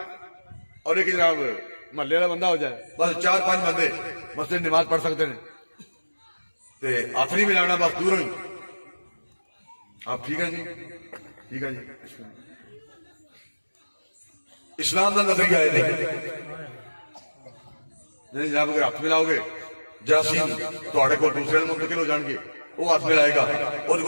اور ایک جناب محلے والا بندہ ہو جائے, بس 4-5 بندے مسجد نماز پڑھ سکتے ہیں. تے ہاتھ نہیں ملانا, بس دور ہوئی. آپ ٹھیک ہے جی, ٹھیک ہے جی. اسلام کا نظریہ ہے نہیں جناب, اگر ہاتھ ملاؤ گے جراثیم تھوڑے کو دوسرے منتقل ہو جان گے, وہ ہاتھ ملائے گا اور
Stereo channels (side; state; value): both; inverted; correlation -1.00